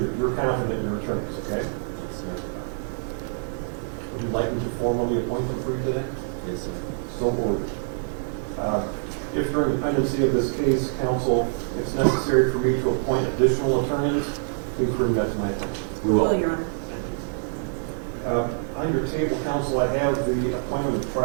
that you're confident in your attorneys, okay? Yes, sir. Would you like me to formally appoint them for you today? Yes, sir. So ordered. If during the pendency of this case, counsel, it's necessary for me to appoint additional attorneys, please bring that to my attention. We will. Your Honor. On your table, counsel, I have the appointment of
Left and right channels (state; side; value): silent; left; 61 dB below the other